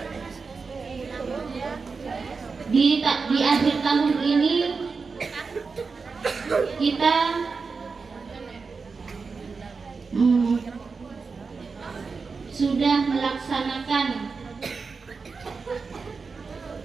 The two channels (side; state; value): left; quieter; 4.7 dB